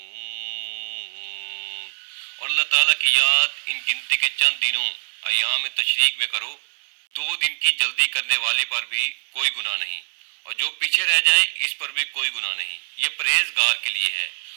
اور اللہ تعالیٰ کی یاد ان گنتی کے چند دنوں ایام تشریق میں کرو. 2 دن کی جلدی کرنے والے پر بھی کوئی گناہ نہیں اور جو پیچھے رہ جائے اس پر بھی کوئی گناہ نہیں. یہ پرہیزگار کے لیے ہے.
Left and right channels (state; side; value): silent; left; 63 dB below the other